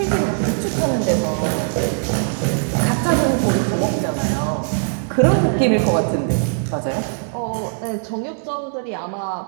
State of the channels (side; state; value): left; silent; digital silence